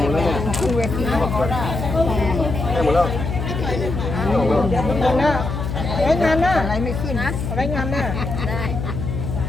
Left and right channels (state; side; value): noise; left; hum, 4 dB below the sound